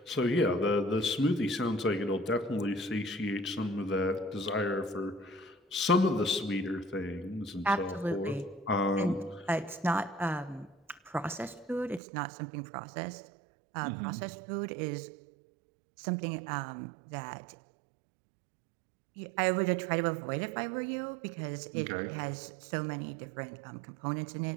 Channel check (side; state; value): left; drops out; at 12.0 s